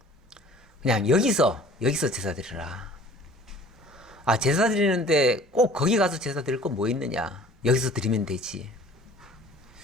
그냥 여기서 제사 드리라. 제사 드리는데 꼭 거기 가서 제사 드릴 건 뭐 있느냐? 여기서 드리면 되지.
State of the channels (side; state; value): both; normal; correlation 0.49